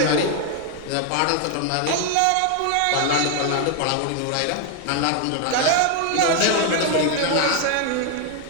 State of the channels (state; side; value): different; both; correlation 0.01